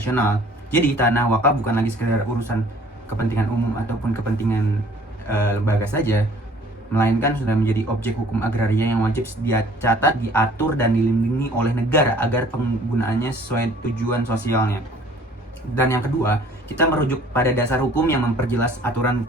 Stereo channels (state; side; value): normal; both; correlation 0.54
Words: Jadi, tanah wakaf bukan lagi sekedar urusan kepentingan umum ataupun kepentingan lembaga saja, melainkan sudah menjadi objek hukum agraria yang wajib dicatat, diatur, dan dilindungi oleh negara agar penggunaannya sesuai tujuan sosialnya. Dan yang kedua, kita merujuk pada dasar hukum yang memperjelas aturan